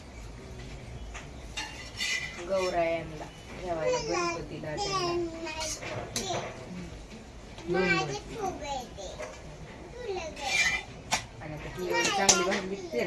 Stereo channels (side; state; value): both; identical; correlation 1.00